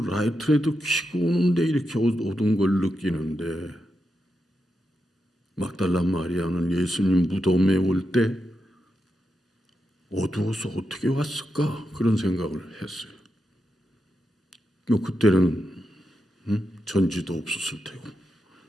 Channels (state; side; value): normal; both; correlation 0.87